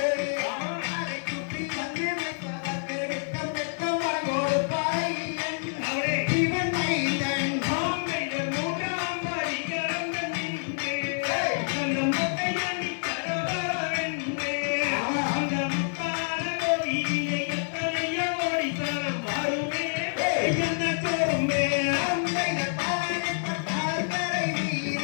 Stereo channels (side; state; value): right; silent; digital silence